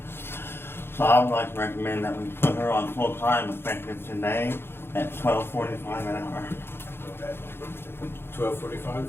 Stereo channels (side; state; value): right; late; 0.11 ms